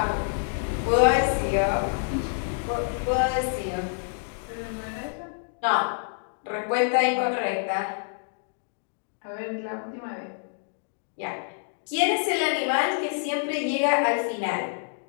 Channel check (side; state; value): right; silent; digital silence